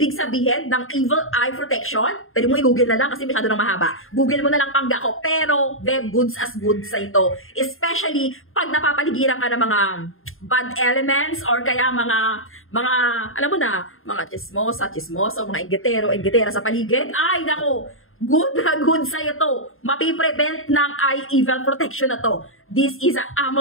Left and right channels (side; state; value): right; late; 0.60 ms